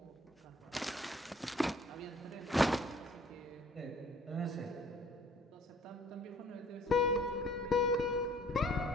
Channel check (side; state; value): both; normal; correlation 0.56